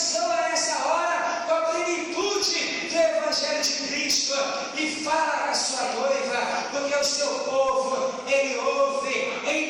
nessa hora com a plenitude do Evangelho de Cristo e fala com a sua noiva, porque o seu povo, ele ouve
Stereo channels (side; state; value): both; identical; correlation 1.00